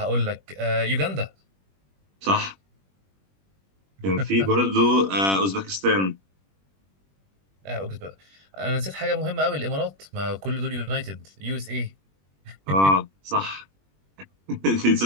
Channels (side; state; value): left; late; 21 ms